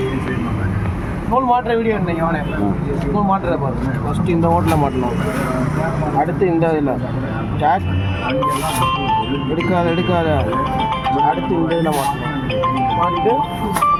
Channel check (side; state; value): both; identical; correlation 1.00